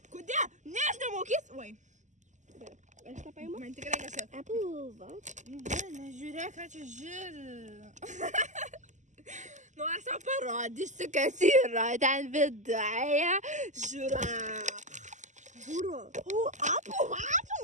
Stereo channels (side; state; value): left; late; 0.35 ms